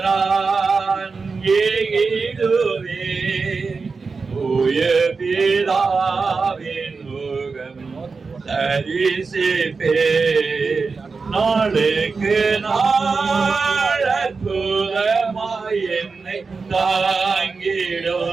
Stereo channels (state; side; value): quieter; left; 4.5 dB